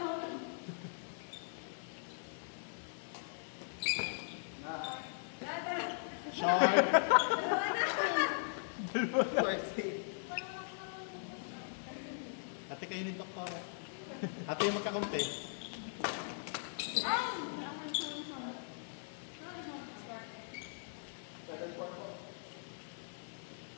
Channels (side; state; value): right; silent; digital silence